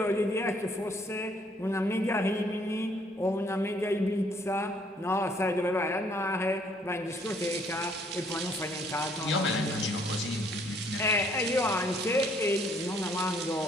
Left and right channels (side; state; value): both; normal; correlation 0.65